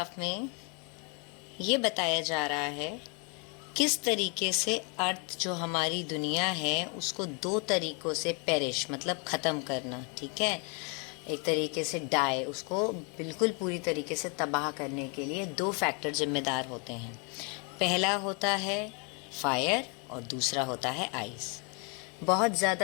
में ये बताया जा रहा है किस तरीके से अर्थ जो हमारी दुनिया है उसको दो तरीक़ों से पेरिश मतलब ख़त्म करना, ठीक है। एक तरीके से डाई, उसको बिल्कुल पूरी तरीके से तबाह करने के लिए दो फैक्टर जिम्मेदार होते हैं। पहला होता है फायर और दूसरा होता है आइस। बहुत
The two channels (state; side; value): quieter; right; 34.4 dB